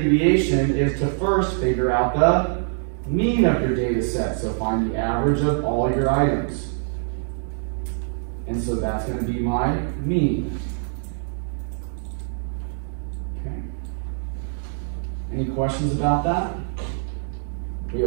deviation is to first figure out the mean of your data set. So find the average of all your items. And so that's going to be my mean. Okay. Any questions about that? We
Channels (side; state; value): left; silent; digital silence